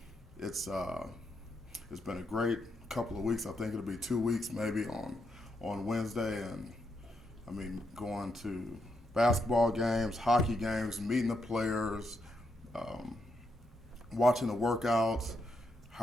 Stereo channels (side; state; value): both; normal; correlation 0.80